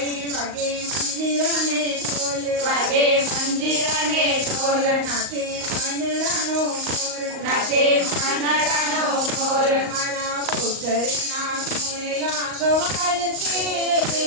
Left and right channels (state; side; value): late; left; 38 ms